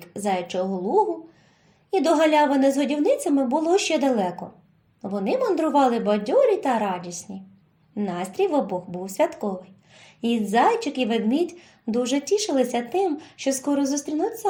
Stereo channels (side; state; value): both; identical; correlation 1.00